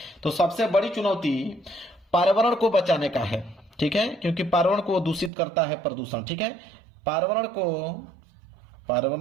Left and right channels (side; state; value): left; drops out; at 5.3 s